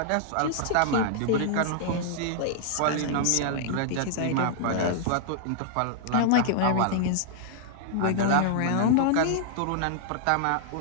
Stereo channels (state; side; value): different; both; correlation -0.01